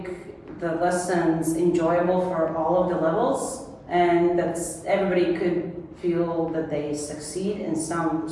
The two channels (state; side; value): identical; both; correlation 1.00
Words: the lessons enjoyable for all of the levels, and that everybody could feel that they succeed in some